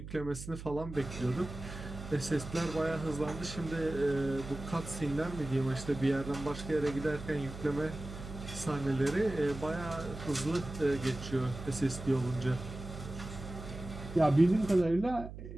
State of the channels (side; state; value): right; noise; hum, 11 dB below the sound